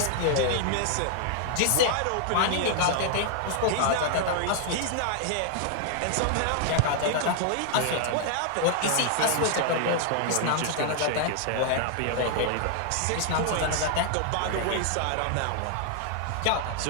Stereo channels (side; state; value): both; different; correlation 0.00